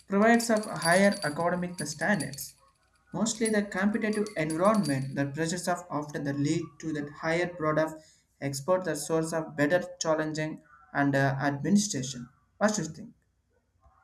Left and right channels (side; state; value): both; identical; correlation 1.00